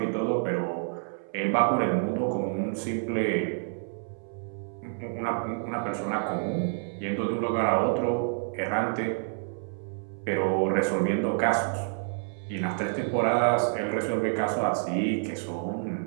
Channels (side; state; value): left; silent; 59 dB below the other